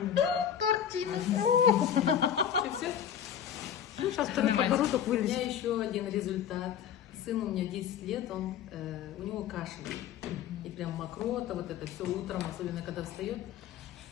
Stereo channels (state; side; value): quieter; right; 9.1 dB